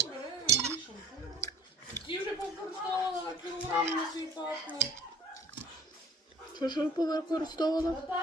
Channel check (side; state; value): both; normal; correlation 0.49